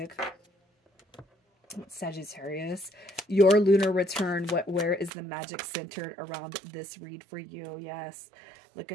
Sagittarius, your lunar return, where is the magic centered around this read for you? Yes, look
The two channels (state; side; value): drops out; left; at 5.1 s